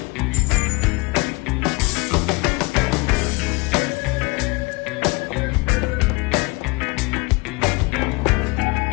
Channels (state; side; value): quieter; right; 26.8 dB